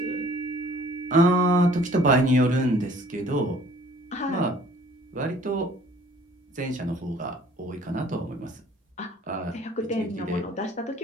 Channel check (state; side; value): normal; both; correlation 0.54